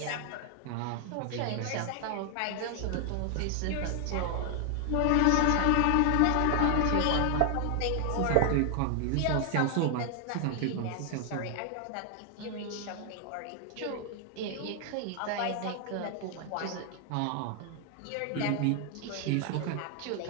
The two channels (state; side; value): different; both; correlation 0.00